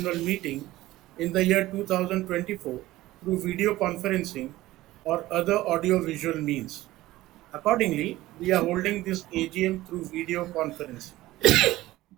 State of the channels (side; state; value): left; quieter; 16.9 dB